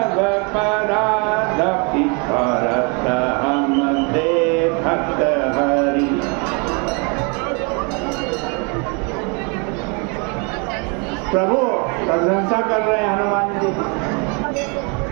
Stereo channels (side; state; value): left; quieter; 33.7 dB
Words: परादपि भरत हम देखत हरि। प्रभु प्रशंसा कर रहे हैं हनुमान जी,